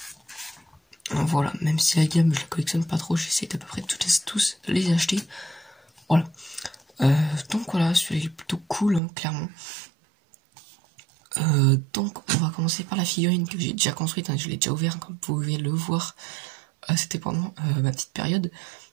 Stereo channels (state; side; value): drops out; left; at 9.0 s